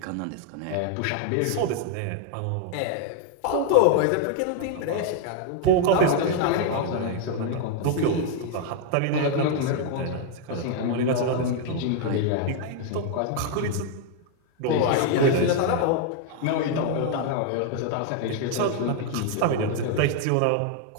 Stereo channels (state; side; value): different; both; correlation 0.00